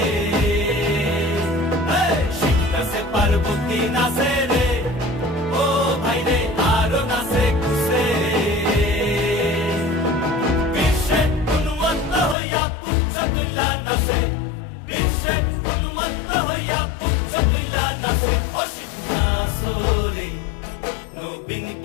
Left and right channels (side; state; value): right; drops out; at 12.4 s